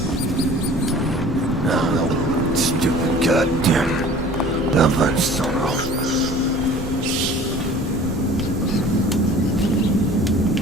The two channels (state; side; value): normal; both; correlation 0.46